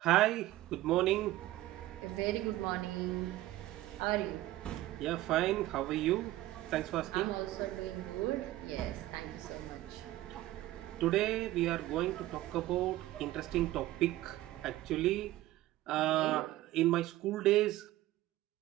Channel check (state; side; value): quieter; left; 16.0 dB